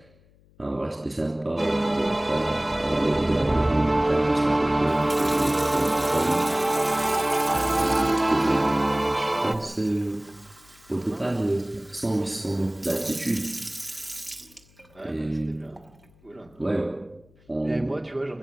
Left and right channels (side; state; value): left; noise; hum, 30 dB below the sound